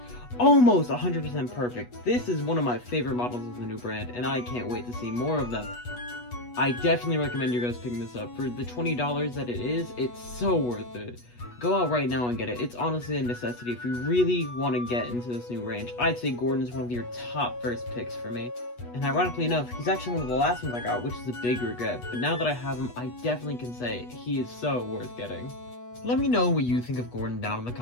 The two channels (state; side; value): late; right; 8.2 ms